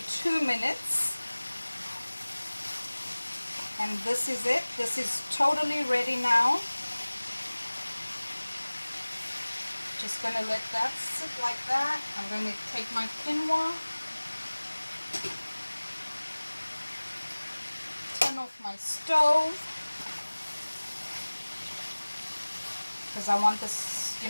2 minutes. And this is it. This is totally ready now. Just gonna let that sit like that. I'm gonna take my quinoa, turn off my stove, because I want this, you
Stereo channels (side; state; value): both; inverted; correlation -1.00